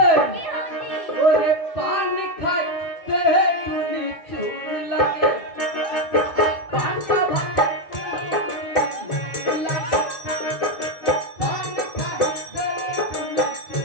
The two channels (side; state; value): right; late; 2.3 ms